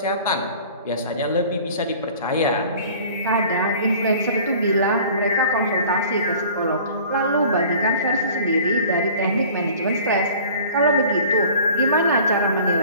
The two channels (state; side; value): inverted; both; correlation -0.46